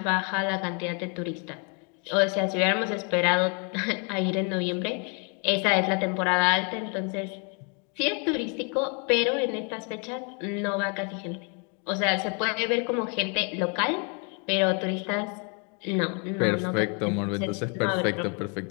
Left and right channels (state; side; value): quieter; right; 36.4 dB